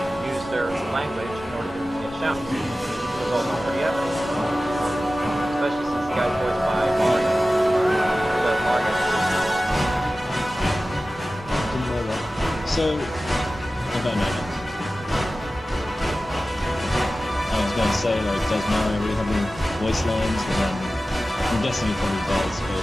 use their language in order to get shouts. It was also pretty epic, especially since the guy's voiced by Mario. So Mario. Didn't know that. So, I don't know. I was going to say, does Mario really have any voice lines? But then, I'm guessing he probably does,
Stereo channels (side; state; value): both; normal; correlation 0.95